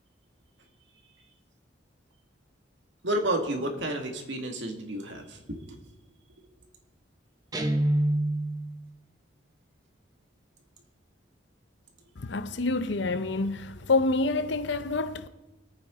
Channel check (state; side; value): normal; both; correlation 0.29